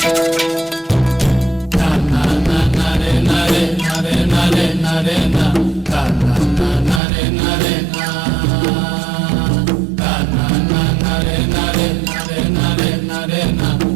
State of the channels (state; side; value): drops out; left; at 7.0 s